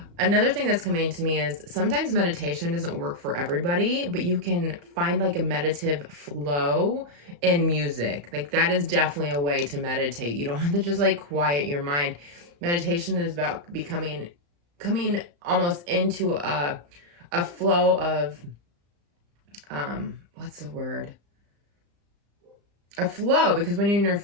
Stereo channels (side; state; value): left; late; 35 ms